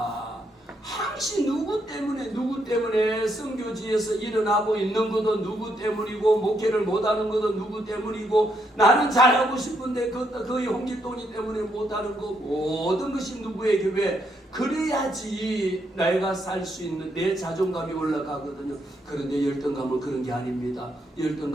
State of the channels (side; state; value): both; normal; correlation 0.76